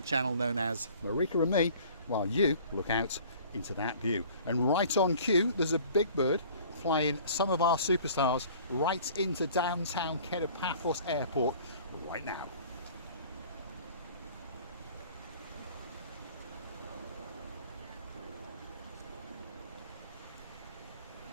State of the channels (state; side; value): inverted; both; correlation -0.49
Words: channel known as Marika and me while you look out into that view. And right on cue, there's a big bird flying some of our superstars right into downtown Paphos Airport right now.